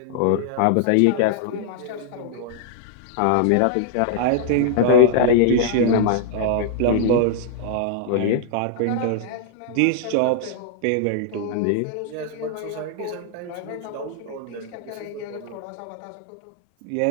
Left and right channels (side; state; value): both; different; correlation -0.01